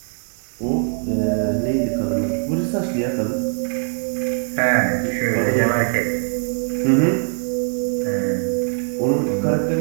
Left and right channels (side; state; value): left; silent; digital silence